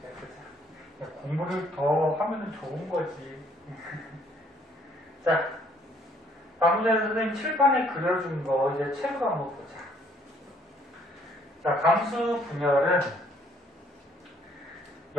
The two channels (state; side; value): normal; both; correlation 0.64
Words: 야, 공부를 더 하면 좋은 거지. 자, 방금 전에 선생님 칠판에 그려준 거 이제 책으로 한번 보자. 자, 감수 분열은